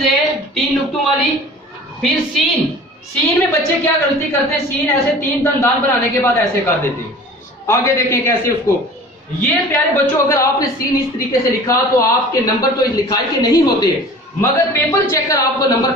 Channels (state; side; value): normal; both; correlation 0.43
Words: दे 3 नुक्तों वाली, फिर सीन। सीन में बच्चे क्या गलती करते हैं, सीन ऐसे 3 दंदान बनाने के बाद ऐसे कर देते हैं। आगे देखें कैसे उसको। ये प्यारे बच्चों अगर आपने सीन इस तरीके से लिखा तो आपके नंबर तो लिखाई के नहीं होते, मगर पेपर चेकर आपको नंबर